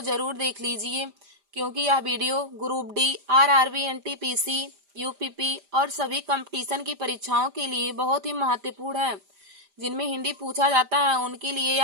जरूर देख लीजिए, क्योंकि यह video group D, RRB, NTPC, UPP और सभी कंपटीशन की परीक्षाओं के लिए बहुत ही महत्वपूर्ण है। जिनमें हिंदी पूछा जाता है उनके लिए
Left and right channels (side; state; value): left; late; 5.0 ms